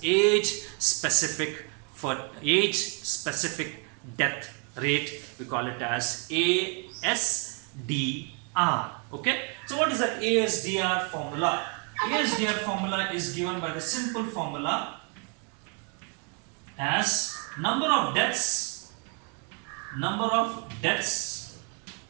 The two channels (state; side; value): quieter; left; 36.7 dB